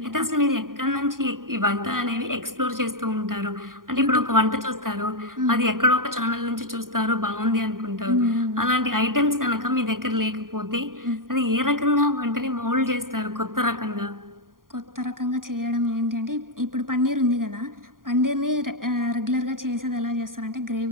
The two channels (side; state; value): left; late; 0.91 ms